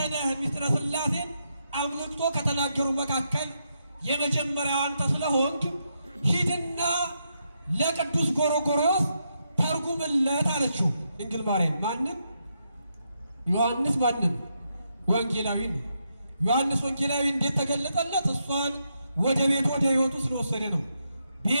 ነህ ምስጢረ ሥላሴን አብልጦ ከተናገሩ መካከል የመጀመሪያው አንተ ስለሆንክ ሂድና ለቅዱስ ጎርጎርዮስ ተርጉምለት አለችው። ድንግል ማርያም ማንን? ዮሐንስ ማንን? ወንጌላዊ ነው። ዮሐንስ ወንጌላዊ እንዴት ተገለጠለት? እሷን ወደ ቤት ወደ ሕይወቱ ስለወሰደ ነው።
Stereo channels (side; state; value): both; inverted; correlation -0.81